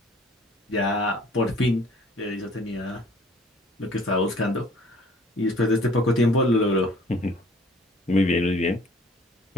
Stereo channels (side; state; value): both; normal; correlation 0.53